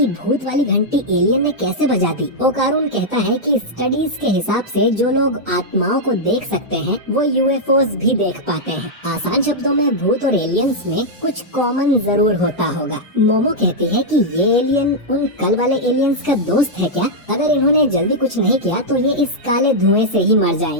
भूत वाली घंटी एलियन ने कैसे बजा दी। ओकारुन कहता है कि स्टडीज के हिसाब से जो लोग आत्माओं को देख सकते हैं वो यूएफओस भी देख पाते हैं। आसान शब्दों में भूत और एलियंस में कुछ कॉमन जरूर होता होगा। मोमो कहती है कि ये एलियन उन कल वाले एलियंस का दोस्त है क्या? अगर इन्होंने जल्दी कुछ नहीं किया तो ये इस काले धुएं से ही मर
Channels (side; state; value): both; normal; correlation -0.05